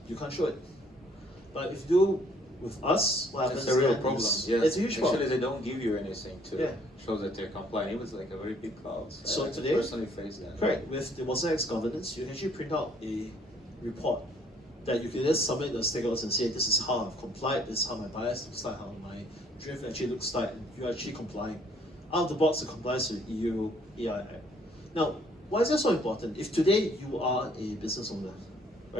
you can't show it. But if you do with us, what happens? It's a real problem. Yes. Yes. It's a huge problem. Actually, they don't give you anything to show that they're compliant. It was like a very big cloud. So I today, personally face that. correct. With the Watson X governance, you can actually print out a report that you can just submit to the stakeholders and say, this is how I've complied, this is how my bias looks like, how my drift actually looks like, and you're actually complying. Out of the box, it complies with EU AI Act. Now, why is that so important? If today you are a business owner,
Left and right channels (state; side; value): normal; both; correlation 0.62